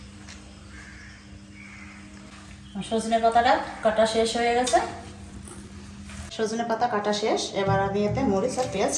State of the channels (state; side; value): identical; both; correlation 1.00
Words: সজনে পাতাটা কাটা শেষ হয়ে গেছে। সজনে পাতা কাটা শেষ, এবার আমি এতে মরিচ আর পেঁয়াজ